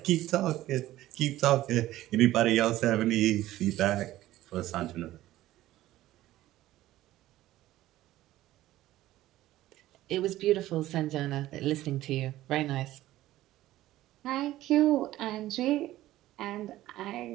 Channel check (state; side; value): quieter; left; 15.2 dB